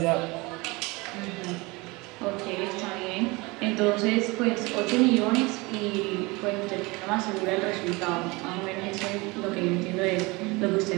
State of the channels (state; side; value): quieter; left; 24.7 dB